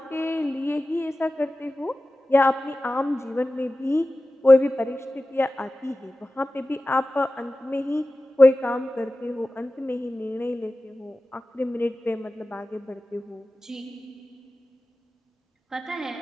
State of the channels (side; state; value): both; normal; correlation 0.95